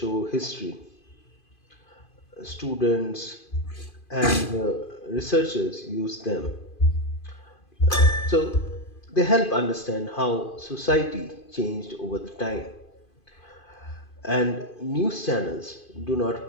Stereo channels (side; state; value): right; late; 2.5 ms